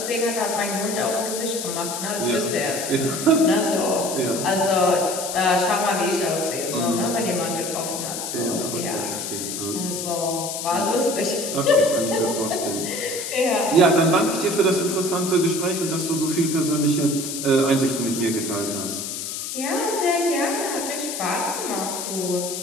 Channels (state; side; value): noise; left; hiss, 5 dB below the sound